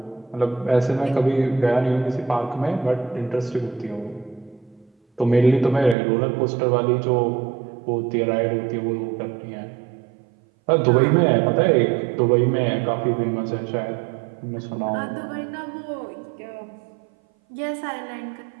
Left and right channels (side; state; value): left; drops out; at 6.0 s